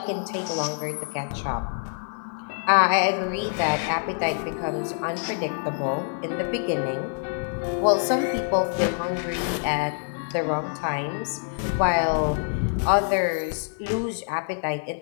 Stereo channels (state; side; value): silent; right; digital silence